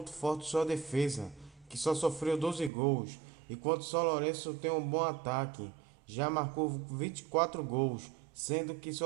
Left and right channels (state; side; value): drops out; left; at 2.7 s